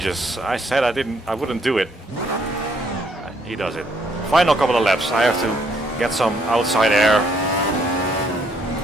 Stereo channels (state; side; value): normal; both; correlation 0.69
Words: I said I wouldn't do it. He does it. Final couple of laps, I have to get some outside air.